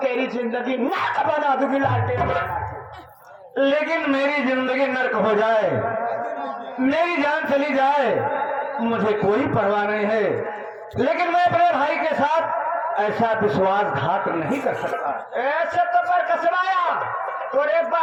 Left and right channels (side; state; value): both; identical; correlation 1.00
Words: तेरी जिंदगी नर्क बना दूंगी लालटेन। लेकिन मेरी जिंदगी नर्क हो जाए, मेरी जान चली जाए, मुझे कोई परवाह नहीं है, लेकिन मैं अपने भाई के साथ ऐसा विश्वासघात नहीं कर सकता। ऐसे तो पर कसवाया तोरे